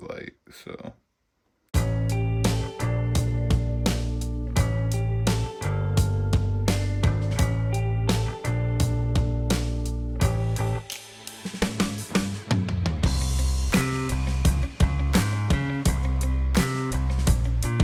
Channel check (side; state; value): both; identical; correlation 1.00